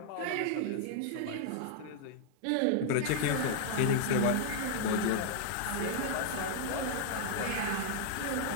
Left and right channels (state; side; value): different; both; correlation -0.01